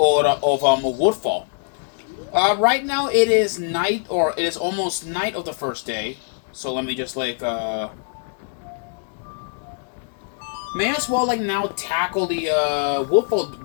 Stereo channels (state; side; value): silent; right; digital silence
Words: Woodfall. Right now it is night, or it is almost night of the first day. So let me just may as well now tackle the